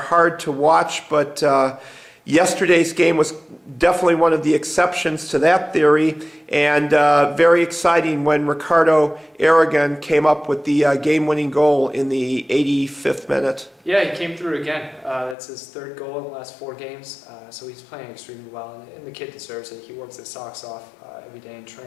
to watch, but yesterday's game was definitely one of the exceptions to that theory, and very exciting when Ricardo Aragon came up with the game-winning goal in the 85th minute. Yeah, he came through again. That's his third goal in the last 4 games, so he's playing extremely well, and the kid deserves it. He works his socks off every day in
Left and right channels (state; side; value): drops out; right; at 15.4 s